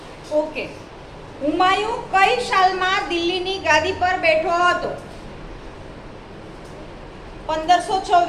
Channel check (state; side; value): identical; both; correlation 1.00